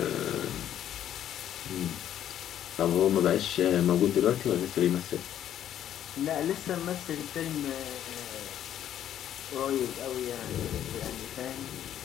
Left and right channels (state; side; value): quieter; right; 10.8 dB